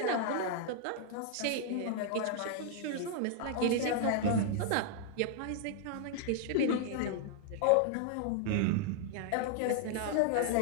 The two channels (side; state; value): both; different; correlation 0.00